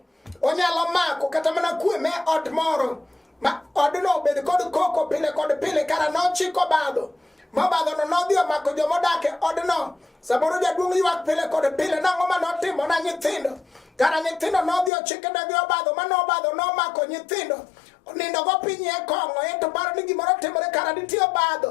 onyalo mako kata mana kwe me od moro ma odno bed kod koko pile kod pile kara nochiko obadho. Mobadho no nodhi omako jomodak e odno. Saboro jaduong' ywak pile kod pile nang'o ma notimo na nyithindo. Kara nyithindo nodhi ochike negi obadho mano obadho nomako nyithindo. Onindo go piny e kong'o ento paro ni gimoro timore kara nitie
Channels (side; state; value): right; drops out; at 14.9 s